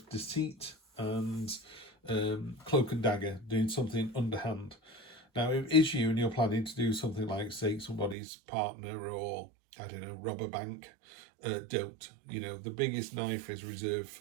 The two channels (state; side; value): drops out; left; at 8.2 s